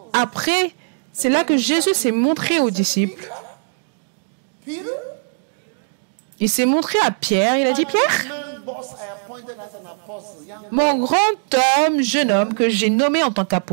Après, c'est là que Jésus s'est montré aux disciples. Il s'est montré à Pierre. Il a dit, Pierre, mon grand homme, jeune homme que j'ai nommé en tant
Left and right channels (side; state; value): left; silent; digital silence